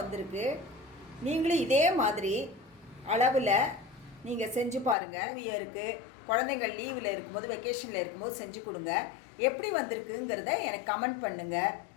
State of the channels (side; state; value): right; drops out; at 5.0 s